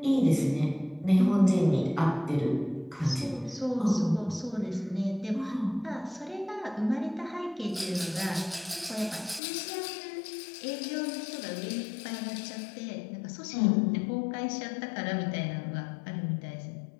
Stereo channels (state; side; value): drops out; right; at 9.4 s